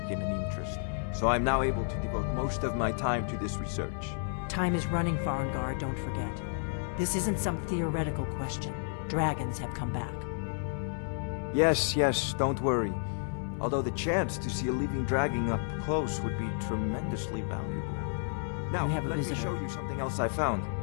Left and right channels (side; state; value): right; silent; 57 dB below the other